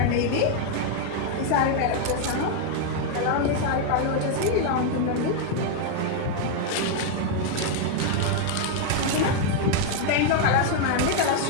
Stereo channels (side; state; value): both; different; correlation 0.00